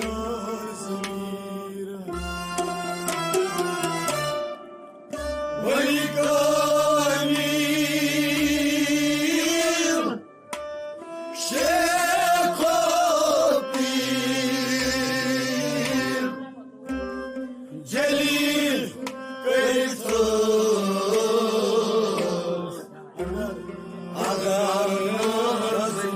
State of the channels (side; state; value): both; identical; correlation 1.00